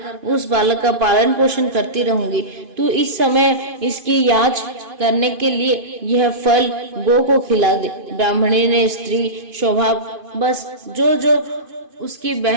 उस बालक का पालन पोषण करती रहूंगी। तू इस समय इसकी याच करने के लिए यह फल गो को खिला दे। ब्राह्मणी ने स्त्री स्वभाव बस जो उसकी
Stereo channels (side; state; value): left; late; 2.5 ms